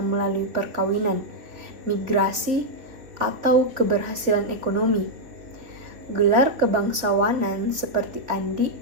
melalui perkawinan, migrasi, atau keberhasilan ekonomi. Gelar kebangsawanan seperti Andi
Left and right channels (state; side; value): late; left; 3.3 ms